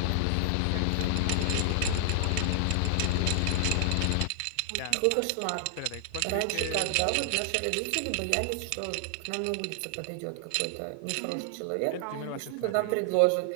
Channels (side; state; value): both; different; correlation -0.01